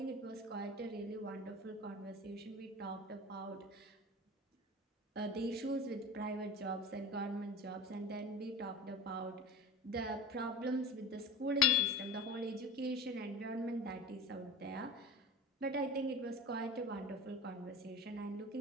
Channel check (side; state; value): both; normal; correlation 0.32